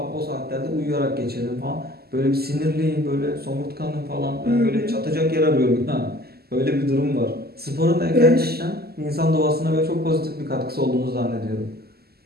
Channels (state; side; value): late; left; 0.46 ms